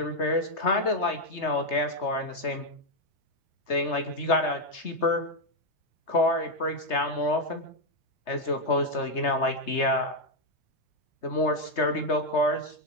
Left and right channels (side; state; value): right; late; 3.3 ms